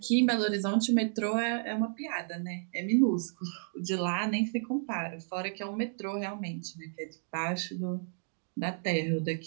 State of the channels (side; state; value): left; silent; digital silence